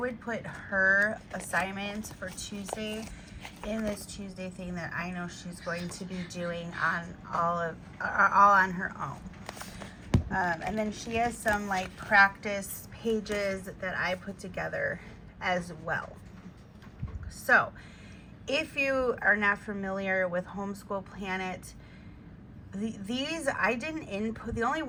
put her assignment for Tuesday in this Tuesday thing that I know she's going to be doing on all on her own. And then she has some like practice pages that I put together as well. So if you are not familiar with Homeschool Planet, these I didn't input. The only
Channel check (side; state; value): both; identical; correlation 1.00